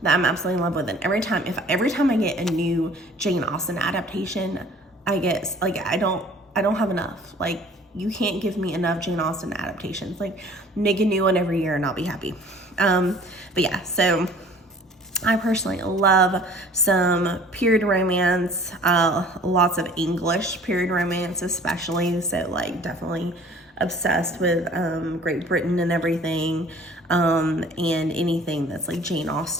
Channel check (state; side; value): normal; both; correlation 0.50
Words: that I'm absolutely in love with. And every time I get a new Jane Austen adaptation, I get like I don't have enough. Like you can't give me enough Jane Austen adaptations. Like make a new one every year and I'll be happy. But yeah, so I personally love some period romance, lots of English period romance especially, so like definitely obsessed with Great Britain and everything, and anything that's like Jane